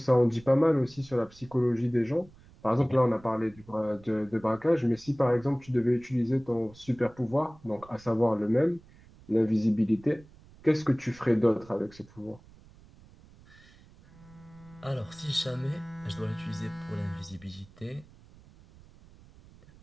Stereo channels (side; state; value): right; noise; rumble, 24 dB below the sound